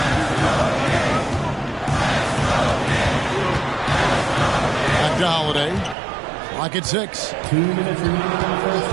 Back to Holiday. Clock at 6. 2 minutes remaining in the first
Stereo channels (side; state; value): left; drops out; at 6.0 s